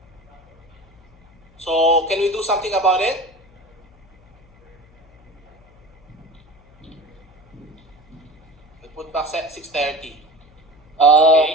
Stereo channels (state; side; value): noise; left; hum, 29 dB below the sound